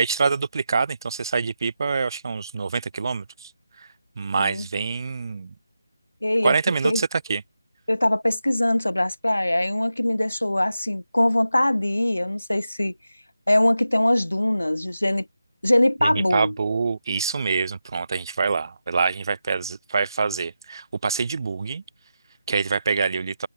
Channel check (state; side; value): inverted; both; correlation -0.90